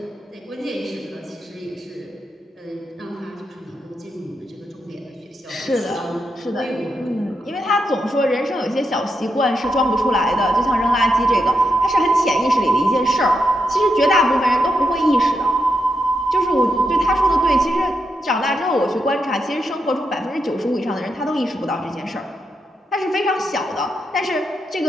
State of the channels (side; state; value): both; normal; correlation 0.83